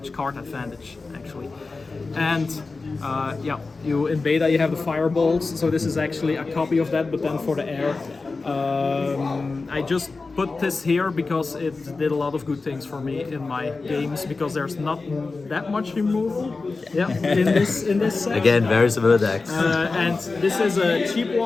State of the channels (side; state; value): right; quieter; 3.9 dB